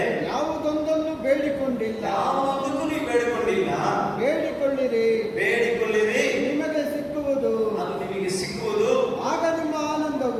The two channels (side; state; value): both; identical; correlation 1.00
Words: ಯಾವುದೊಂದನ್ನು ಬೇಡಿಕೊಂಡಿಲ್ಲ. ಯಾವುದಕ್ಕೂ ನೀವು ಬೇಡಿಕೊಂಡಿಲ್ಲ. ಬೇಡಿಕೊಳ್ಳಿರಿ, ನಿಮಗೆ ಸಿಕ್ಕುವುದು. ಅದು ನಿಮಗೆ ಸಿಕ್ಕುವುದು. ಆಗ ನಿಮ್ಮ